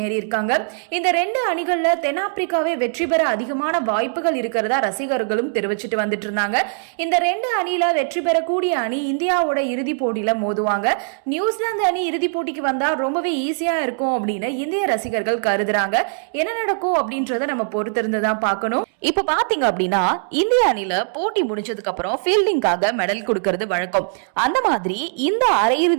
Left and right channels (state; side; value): silent; left; digital silence